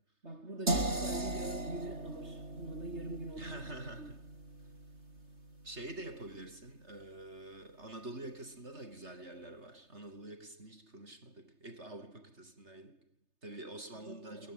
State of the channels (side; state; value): left; late; 3.3 ms